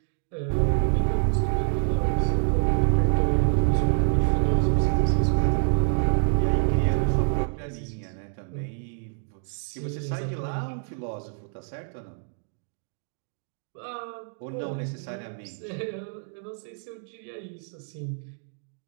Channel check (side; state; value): left; silent; 60 dB below the other